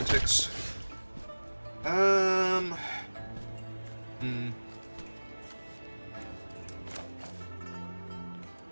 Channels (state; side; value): inverted; both; correlation -1.00